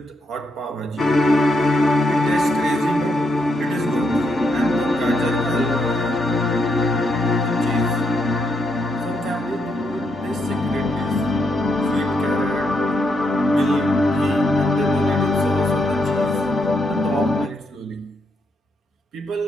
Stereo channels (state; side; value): normal; both; correlation 0.79